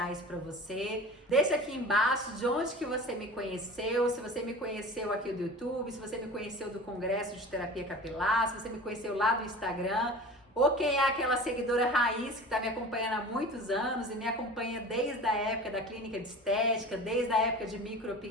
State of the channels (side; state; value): both; normal; correlation 0.37